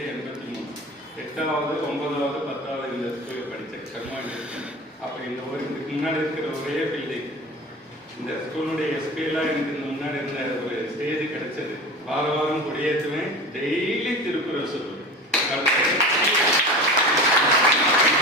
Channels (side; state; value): both; normal; correlation 0.33